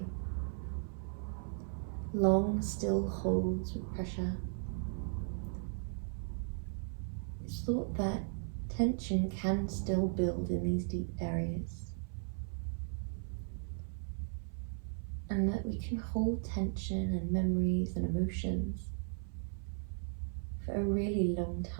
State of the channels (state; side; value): silent; left; 53 dB below the other